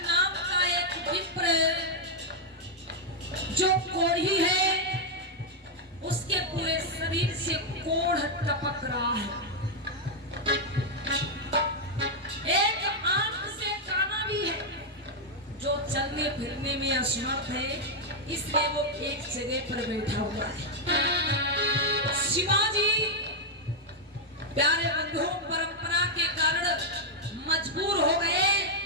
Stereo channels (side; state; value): both; normal; correlation -0.01